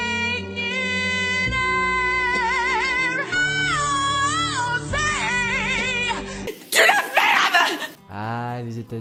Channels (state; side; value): identical; both; correlation 1.00